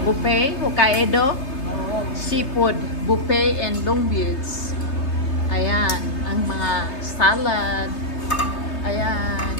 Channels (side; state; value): right; late; 3.3 ms